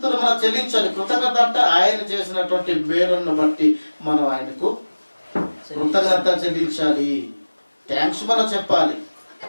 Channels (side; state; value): both; inverted; correlation -1.00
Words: మనం చెల్లించాలి. కృతజ్ఞత అంటే ఆయన చేసినటువంటి మేలును బట్టి మనం ఆయనకు కృతజ్ఞత చెల్లించాలి. థ్యాంక్స్ మనం చెప్పాలి.